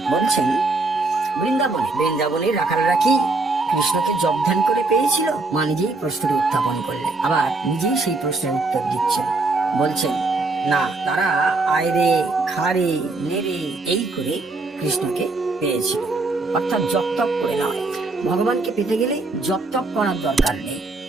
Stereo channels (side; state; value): left; quieter; 3.4 dB